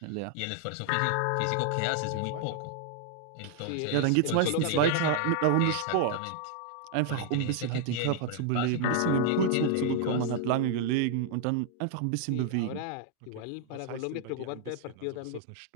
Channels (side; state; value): both; different; correlation 0.00